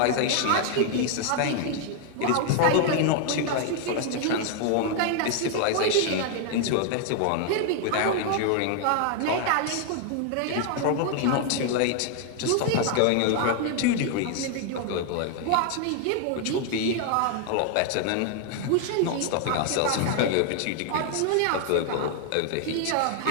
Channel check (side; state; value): both; different; correlation 0.00